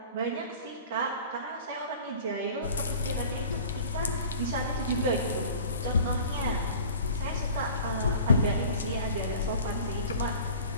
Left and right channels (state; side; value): inverted; both; correlation -0.42